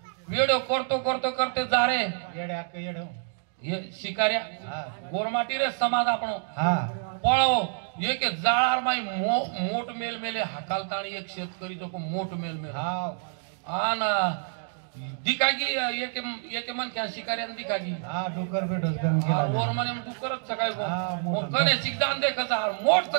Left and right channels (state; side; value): silent; left; digital silence